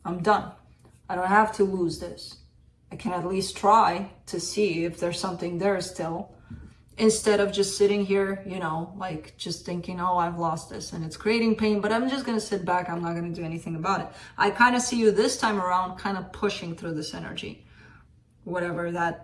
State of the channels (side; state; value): both; identical; correlation 1.00